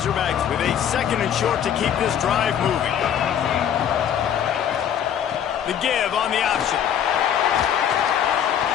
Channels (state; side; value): quieter; right; 9.3 dB